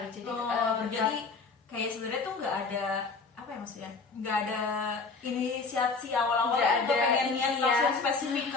Jadi jadi kayak sebenarnya tuh nggak ada apa ya maksudnya, nggak ada inisiasi awal-awal tuh pengen niat langsung spesifik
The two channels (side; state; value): right; quieter; 4.4 dB